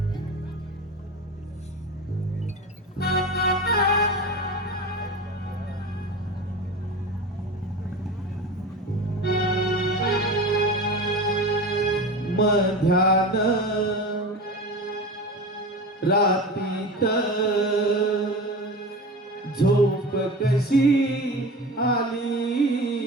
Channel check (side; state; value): both; normal; correlation 0.30